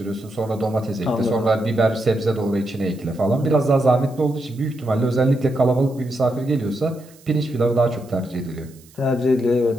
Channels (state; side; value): noise; right; hiss, 26 dB below the sound